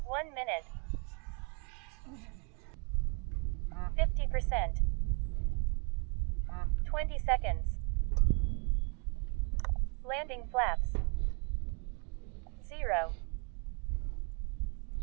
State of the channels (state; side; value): quieter; left; 36.5 dB